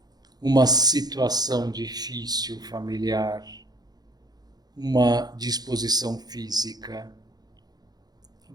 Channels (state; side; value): late; left; 0.19 ms